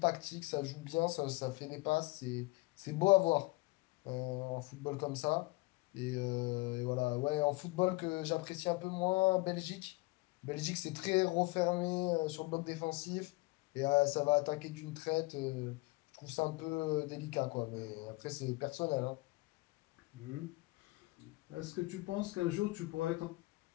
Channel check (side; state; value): right; quieter; 23.5 dB